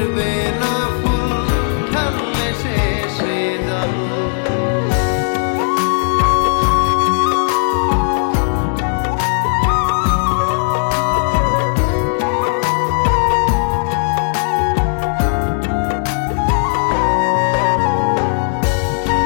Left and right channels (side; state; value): right; silent; 69 dB below the other